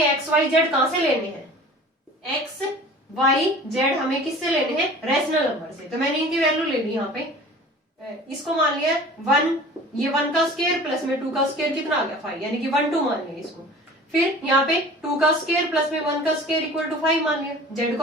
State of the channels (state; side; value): normal; both; correlation 0.42